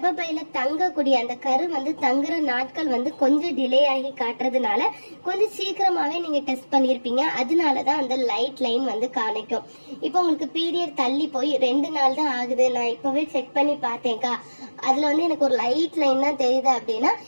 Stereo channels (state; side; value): inverted; both; correlation -1.00